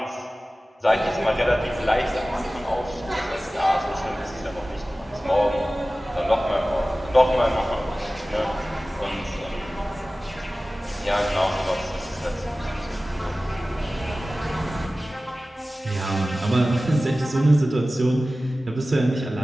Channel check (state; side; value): normal; both; correlation 0.97